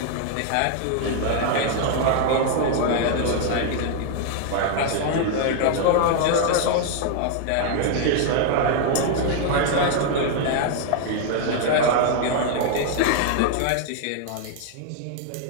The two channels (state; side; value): different; both; correlation 0.00